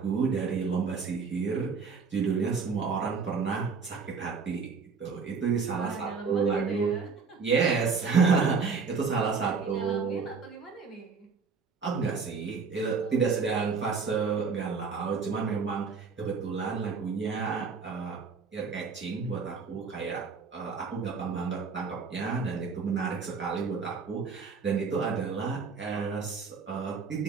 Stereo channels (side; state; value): left; quieter; 5.1 dB